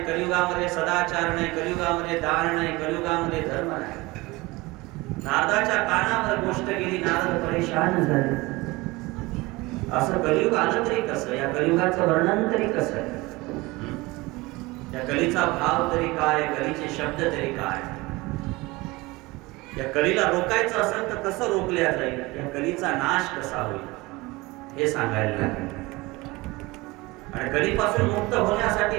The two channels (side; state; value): left; quieter; 22.2 dB